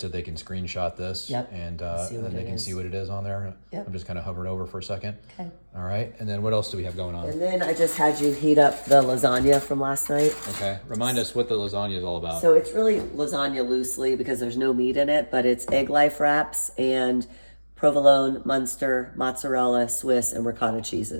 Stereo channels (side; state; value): both; inverted; correlation -1.00